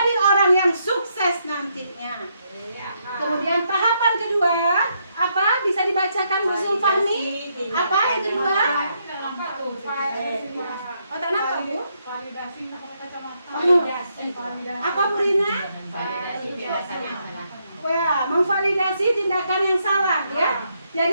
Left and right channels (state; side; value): inverted; both; correlation -0.76